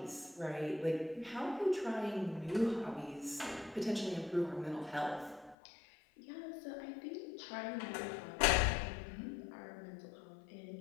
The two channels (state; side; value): drops out; right; at 5.6 s